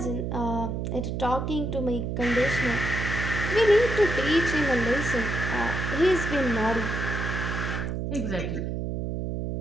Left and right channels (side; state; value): right; noise; hum, 2 dB below the sound